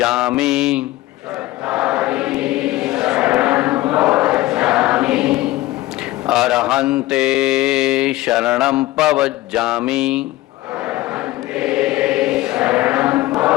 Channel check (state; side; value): quieter; right; 17.5 dB